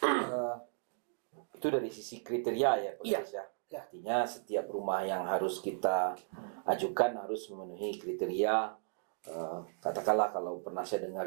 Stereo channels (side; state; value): left; silent; digital silence